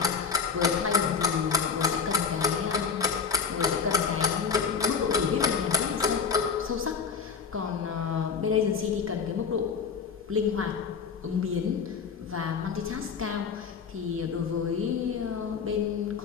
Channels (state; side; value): quieter; right; 6.0 dB